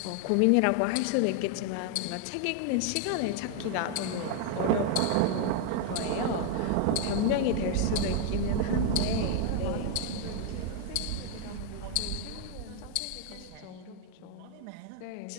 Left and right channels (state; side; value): different; both; correlation 0.00